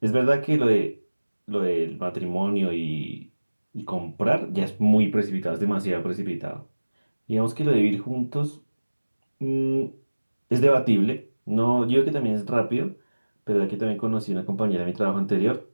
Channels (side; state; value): both; inverted; correlation -1.00